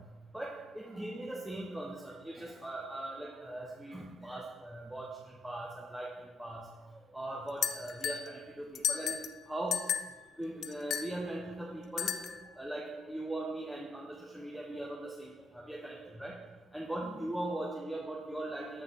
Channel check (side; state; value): both; normal; correlation 0.80